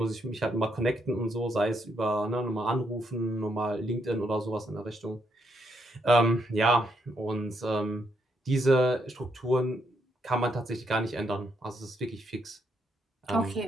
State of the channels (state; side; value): normal; both; correlation 0.77